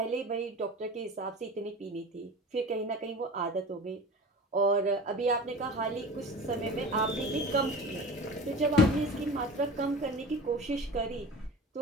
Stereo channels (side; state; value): both; normal; correlation 0.35